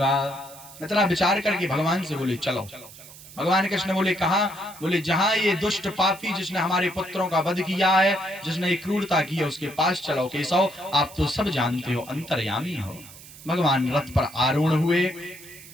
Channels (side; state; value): right; noise; hiss, 18 dB below the sound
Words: इतना विचार करके भगवान से बोले चलो। भगवान कृष्ण बोले कहा? बोले जहां ये दुष्ट पापी जिसने हमारे पुत्रों का वध किया है, जिसने ये क्रूरता की है, उसके पास चलो। केशव आप तो सब जानते हो, अंतर्यामी हो। भगवान रथ पर आरूढ़ हुए,